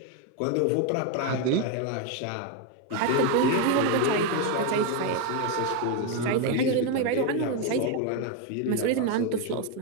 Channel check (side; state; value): both; different; correlation 0.02